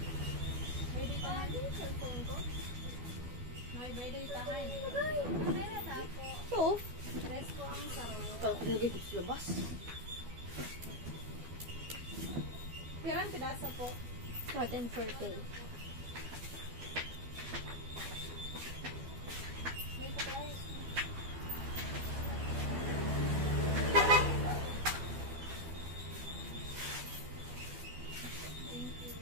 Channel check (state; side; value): late; left; 12 ms